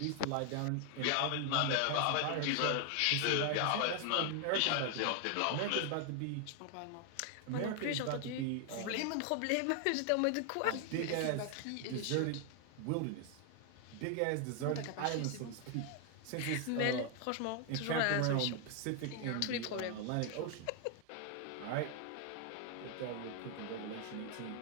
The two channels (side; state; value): both; different; correlation 0.00